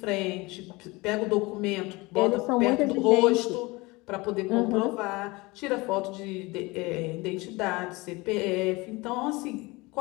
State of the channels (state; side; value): quieter; right; 23.5 dB